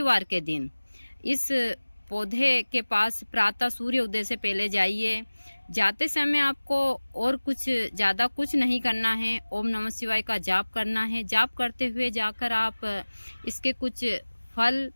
के दिन इस पौधे के पास प्रातः सूर्य उदय से पहले जाइए। जाते समय आपको और कुछ ज़्यादा कुछ नहीं करना है, ओम नमः शिवाय का जाप करना है। जाप करते हुए जाकर आप इसके कुछ फल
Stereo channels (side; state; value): both; inverted; correlation -1.00